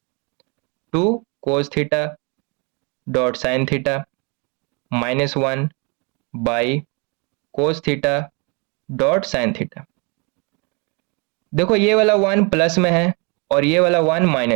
2 cos theta dot sine theta minus 1 by cos theta dot sine theta. देखो ये वाला 1 प्लस में है और ये वाला 1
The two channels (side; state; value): left; quieter; 32.2 dB